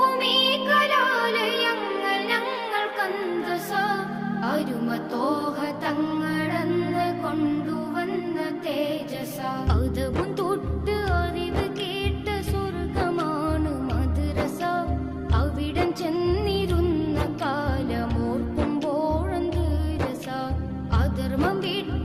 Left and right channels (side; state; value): both; identical; correlation 1.00